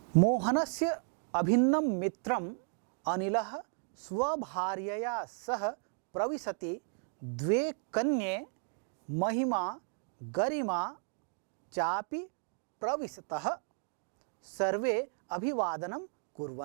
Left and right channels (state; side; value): silent; left; 55 dB below the other